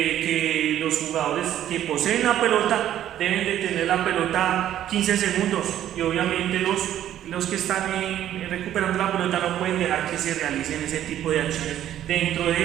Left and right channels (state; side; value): quieter; left; 11.7 dB